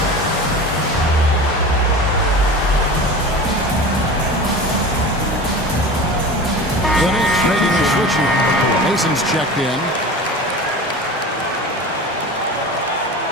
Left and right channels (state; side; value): normal; both; correlation 0.33